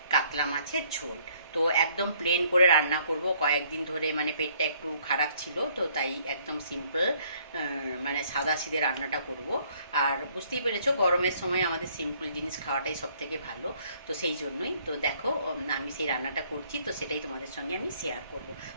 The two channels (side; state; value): both; inverted; correlation -0.63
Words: কাতলা মাছের ঝোল। তো একদম প্লেন করে রান্না করব। কয়েকদিন ধরে মানে পেটটা একটু খারাপ ছিল, তো তাই একদম সিম্পল মানে সাদা সিধে রান্নাটা করব। আর বুঝতেই পেরেছো, গরমের সময় আমাদের সিম্পল জিনিস খাওয়াটাই সব থেকে ভালো। তো সেই জন্যই তো দেখো আমি সেই রান্নাটা করছি, তো সেটাই তোমাদের সঙ্গে আমি শেয়ার করব।